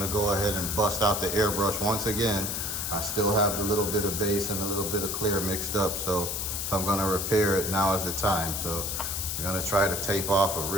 to go ahead and bust out the airbrush once again. I still have the little bit of base and a little bit of clear mixed up, so if I'm gonna repair it, now is the time. So I'm gonna try to tape off a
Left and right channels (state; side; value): noise; left; hiss, 2 dB below the sound